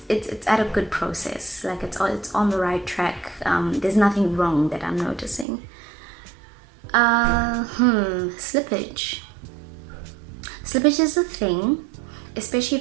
it's at a good process. Like it's on the right track. There's nothing wrong that I'm noticing. Slippage. Slippage is a thing, especially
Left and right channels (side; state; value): left; drops out; at 5.5 s